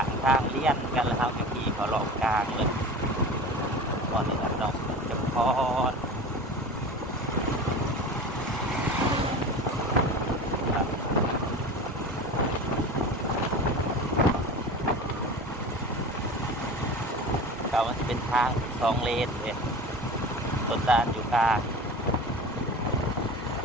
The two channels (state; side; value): normal; both; correlation 0.34